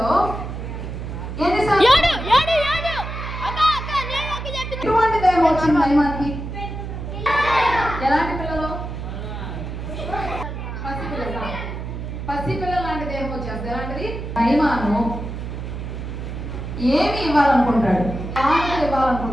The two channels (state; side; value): noise; right; hum, 7 dB below the sound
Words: ఎటువంటి దైవం వచ్చింది నయమానికి? ఎలాంటి పిల్లలు? పసిపిల్లలు లాంటి దేహం వచ్చేస్తుంది. ఎలాంటిది? నయమాను ఏమి ఇవ్వాలనుకుంటాడు? కానుకలు